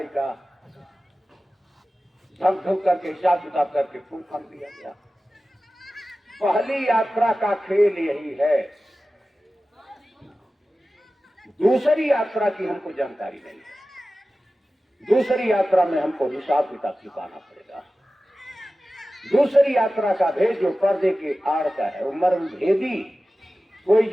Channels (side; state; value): both; normal; correlation 0.95